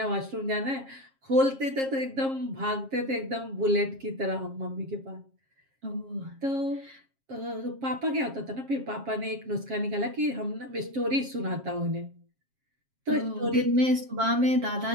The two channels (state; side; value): late; left; 7.5 ms